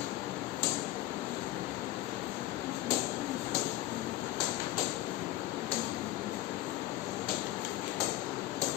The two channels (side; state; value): right; quieter; 15.8 dB